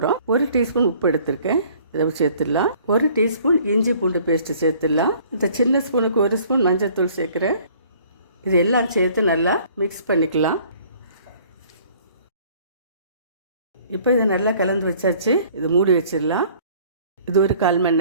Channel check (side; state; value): both; inverted; correlation -0.55